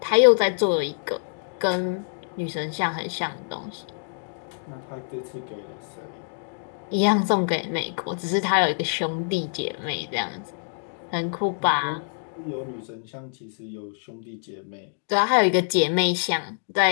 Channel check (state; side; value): silent; right; digital silence